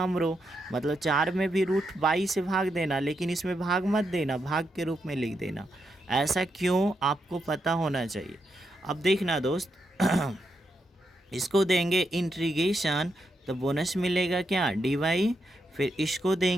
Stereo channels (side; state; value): both; normal; correlation 0.83